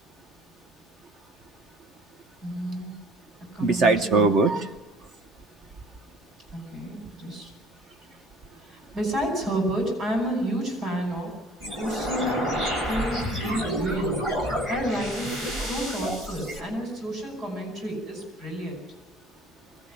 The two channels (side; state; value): both; normal; correlation 0.51